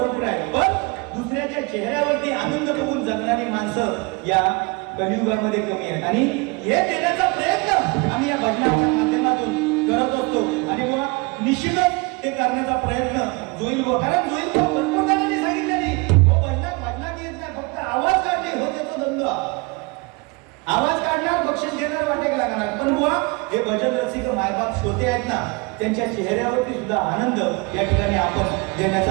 आहेत, पण दुसऱ्याच्या चेहऱ्यावरती आनंद बघून जगणारी माणसं या कलियुगामध्ये कमी आहेत. आणि हे देण्याचा प्रयत्न आम्ही या भजनाच्या माध्यमातून करत असतो. आणि मग निश्चितच ते करण्याचा प्रयत्न जोईल व कारण जोईल भरपूर जणांनी सांगितले नाही भजनात येत नाही, फक्त आवाज काढणे हो त्याचा धंदा. आवाज काढणार बक्षीस घेणार वाटेक लागणार. पण बुवा हे भजन रसिक मायबाप श्रोते आहेत ना त्यांच्या चेहऱ्यावरती सुद्धा आनंद या ठिकाणी आपण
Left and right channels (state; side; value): quieter; left; 28.1 dB